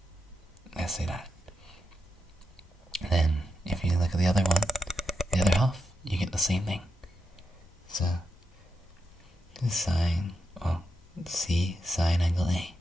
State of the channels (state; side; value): normal; both; correlation 0.85